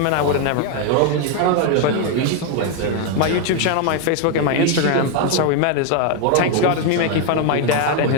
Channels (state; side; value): different; both; correlation 0.01